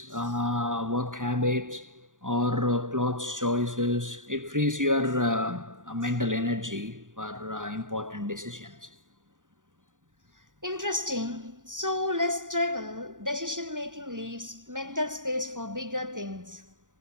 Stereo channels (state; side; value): late; left; 0.88 ms